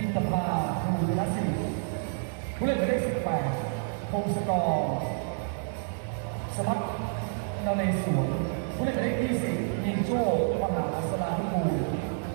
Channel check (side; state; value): left; silent; digital silence